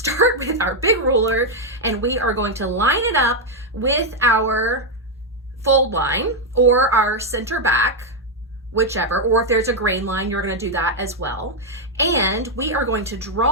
with our big ruler and we are going to line it up with our fold line or our center back, whichever, or if there's a grain line, you're going to do that as well. And we are going to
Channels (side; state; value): both; normal; correlation 0.01